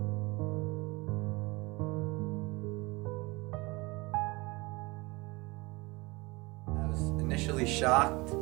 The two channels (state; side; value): quieter; left; 24.4 dB